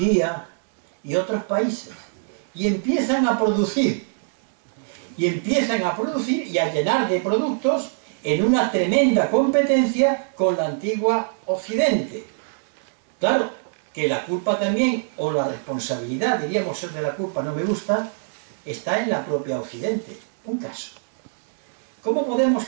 y otros países. Y empiezan a producir. Y a llenar de productos en una tremenda competencia con la antigua Occidente. Claro, que la culpa también, o la responsabilidad, diríamos ser de la culpa, no me gusta, está en la propia Occidente. Un caso. ¿Cómo podemos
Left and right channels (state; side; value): silent; left; digital silence